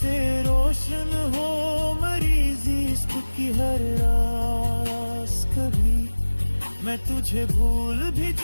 रोशन हो मेरी जिस्म की हर रास कभी। मैं तुझे भूल भी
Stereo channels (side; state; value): both; inverted; correlation -1.00